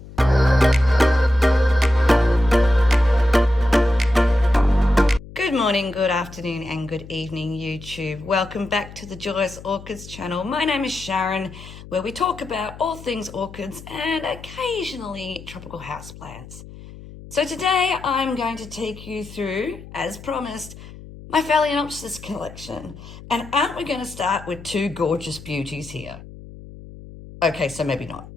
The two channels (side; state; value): left; noise; hum, 16 dB below the sound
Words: Good morning, good afternoon, and good evening, YouTube. Welcome back to the Joyous Orchids channel. My name is Sharon, where we talk about all things orchids and occasionally tropical houseplants. So today I'm going to take you through, as promised, my Phalaenopsis collection. And aren't we going to start with two gorgeous beauties here? Okay, so maybe not.